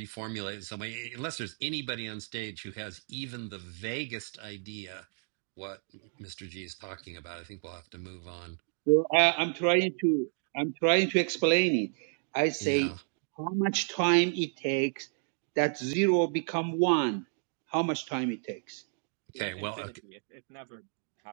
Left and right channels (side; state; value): left; silent; digital silence